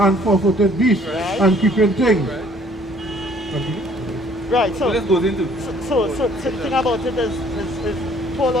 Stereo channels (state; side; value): normal; both; correlation 0.58